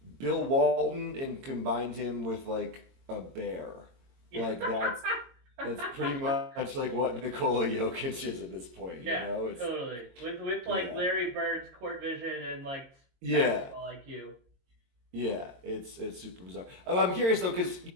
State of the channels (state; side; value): late; left; 22 ms